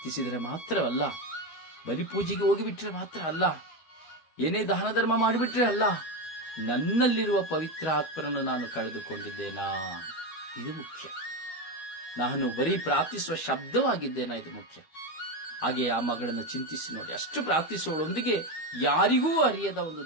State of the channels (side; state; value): right; late; 12 ms